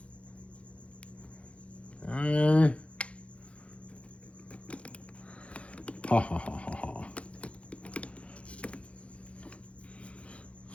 Okay. Ha ha ha ha ha.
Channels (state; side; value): late; right; 0.062 ms